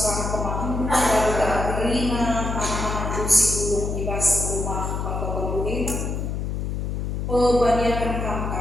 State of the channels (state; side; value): noise; left; hum, 2 dB below the sound